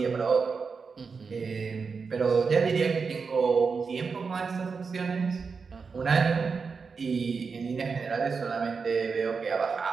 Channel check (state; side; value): quieter; left; 5.1 dB